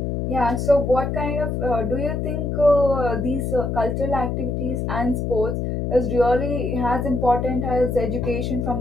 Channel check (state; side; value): noise; left; hum, 1 dB below the sound